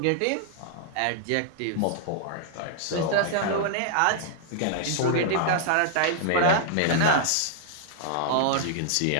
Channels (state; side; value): different; both; correlation -0.01